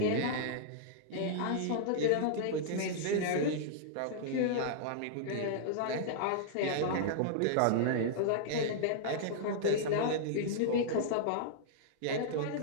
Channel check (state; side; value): different; both; correlation -0.02